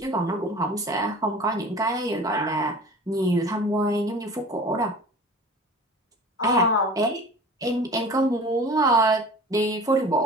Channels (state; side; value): normal; both; correlation 0.41